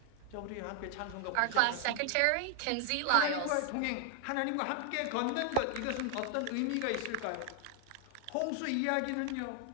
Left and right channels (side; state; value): both; different; correlation 0.00